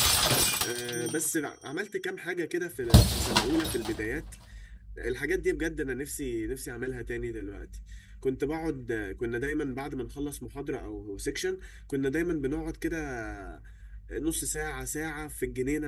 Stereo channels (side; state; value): both; identical; correlation 1.00